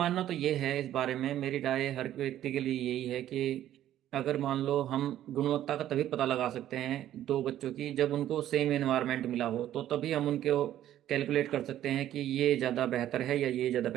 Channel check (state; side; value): quieter; left; 12.2 dB